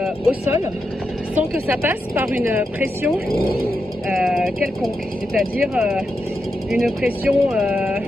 au sol sans que ça passe par une pression quelconque, c'est-à-dire une pression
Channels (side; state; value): both; normal; correlation 0.86